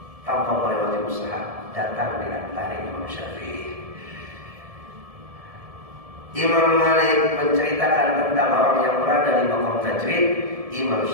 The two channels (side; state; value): left; late; 1.7 ms